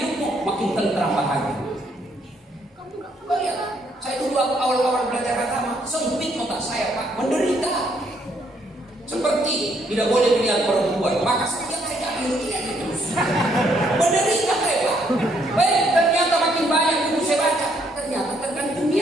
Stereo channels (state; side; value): normal; both; correlation 0.70